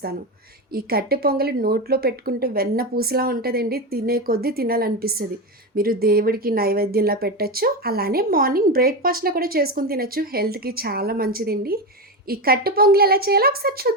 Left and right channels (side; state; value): both; normal; correlation 0.15